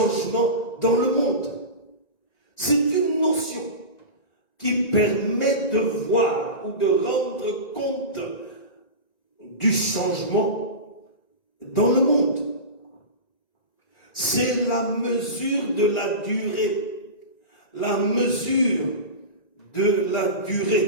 dans le monde. C'est une notion qui permet de voir ou de rendre compte du changement dans le monde. C'est la mesure de la durée. La mesure de la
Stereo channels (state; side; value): late; right; 1.9 ms